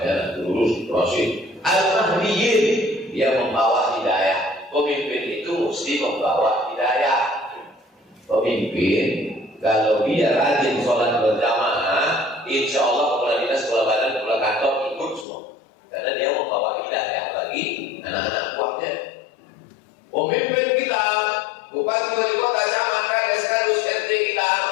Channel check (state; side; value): drops out; right; at 15.2 s